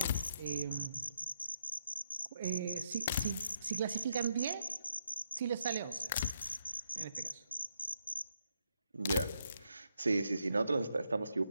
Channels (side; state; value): both; inverted; correlation -0.78